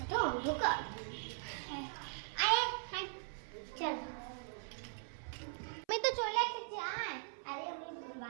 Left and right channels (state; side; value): silent; left; 51 dB below the other